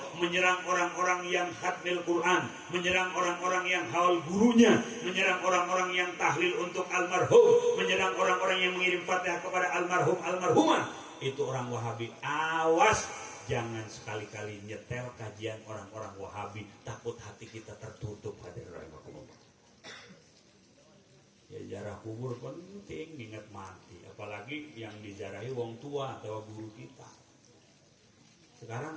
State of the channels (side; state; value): both; identical; correlation 1.00